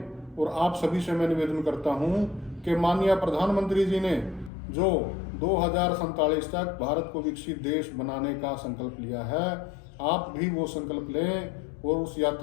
और आप सभी से मैं निवेदन करता हूं कि माननीय प्रधानमंत्री जी ने जो 2047 तक भारत को विकसित देश बनाने का संकल्प लिया है, आप भी वो संकल्प लें और उस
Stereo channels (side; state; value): right; drops out; at 4.5 s